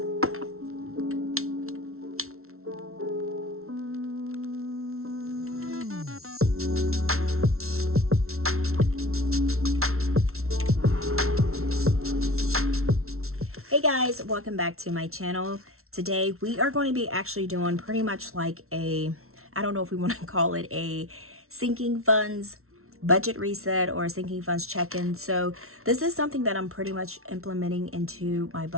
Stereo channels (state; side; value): late; left; 0.62 ms